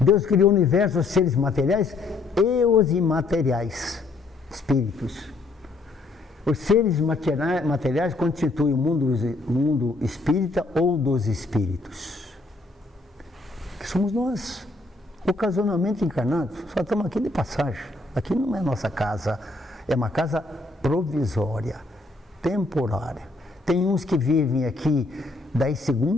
criou o universo, os seres materiais e os imateriais, espíritos. Os seres materiais constituem o mundo espírita ou dos espíritos, que somos nós, ocasionalmente encarnados. Só estamos aqui de passagem. Aqui não é nossa casa, é uma casa provisória, temporária. Tem uns que vivem aqui 10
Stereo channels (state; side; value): quieter; right; 3.3 dB